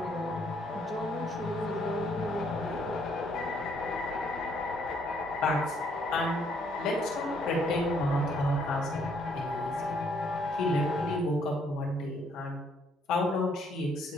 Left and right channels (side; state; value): both; normal; correlation 0.68